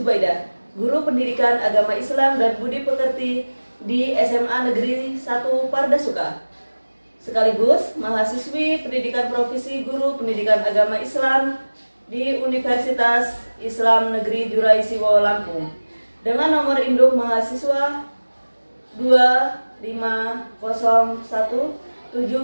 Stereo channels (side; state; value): both; inverted; correlation -1.00